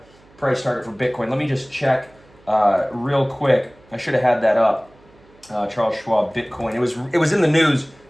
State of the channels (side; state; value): right; noise; hum, 28 dB below the sound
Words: price target for Bitcoin. Let me just check real quick. I should have had that up. Charles Schwab Bitcoin. It was in the news